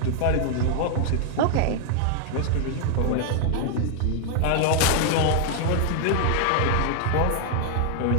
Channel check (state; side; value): different; both; correlation 0.00